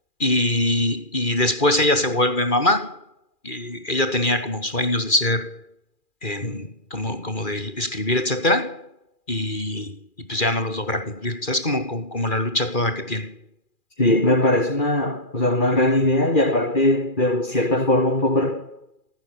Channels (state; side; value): late; right; 2.4 ms